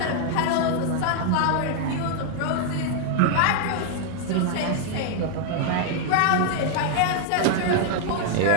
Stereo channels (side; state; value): both; different; correlation 0.00